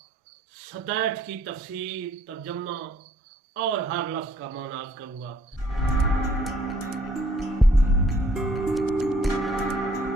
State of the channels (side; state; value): both; normal; correlation 0.62